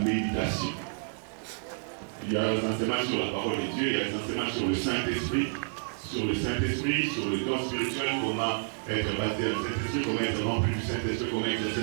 Il y a des enseignements sur la parole de Dieu, il y a des enseignements sur le Saint-Esprit, sur le don spirituel, comment être basé à le Saint-Esprit, comment être rempli du Saint-Esprit, comment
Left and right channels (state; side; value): silent; left; digital silence